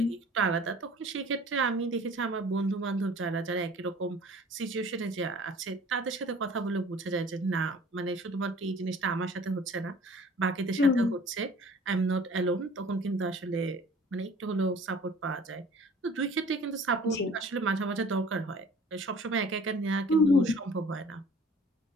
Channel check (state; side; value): normal; both; correlation 0.49